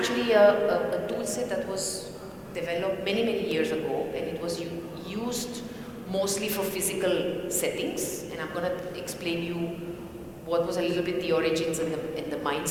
a tool set that was developed many, many years ago, and it was used mostly for physical settings. And I'm going to explain you what was a little bit the origins and the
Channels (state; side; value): identical; both; correlation 1.00